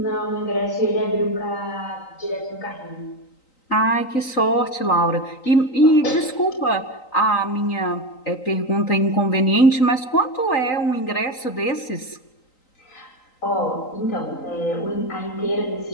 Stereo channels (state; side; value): late; right; 3.9 ms